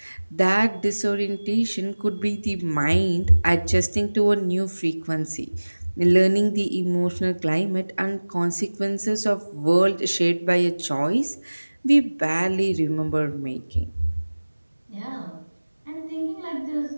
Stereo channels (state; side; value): inverted; both; correlation -1.00